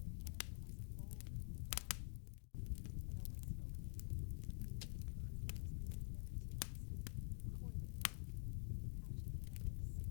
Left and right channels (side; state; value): right; silent; digital silence